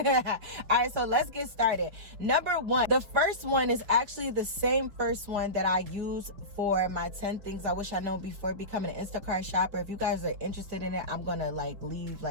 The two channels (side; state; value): left; late; 5.4 ms